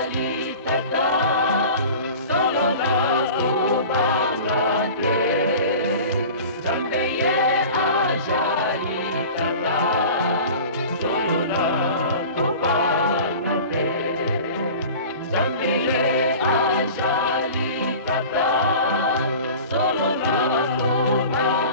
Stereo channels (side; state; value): both; inverted; correlation -0.39